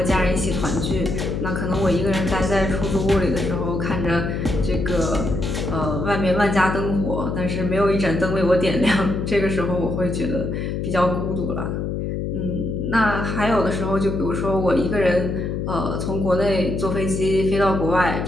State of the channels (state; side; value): noise; left; hum, 2 dB below the sound